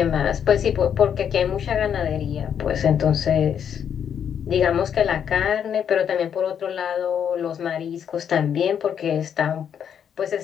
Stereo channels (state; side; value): quieter; right; 8.4 dB